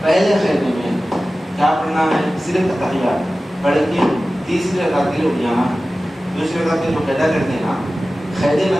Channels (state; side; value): normal; both; correlation 0.96